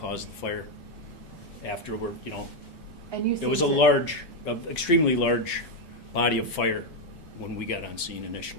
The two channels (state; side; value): normal; both; correlation 0.04